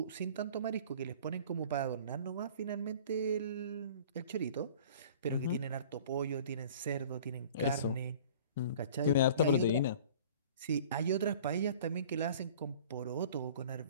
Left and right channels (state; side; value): inverted; both; correlation -0.46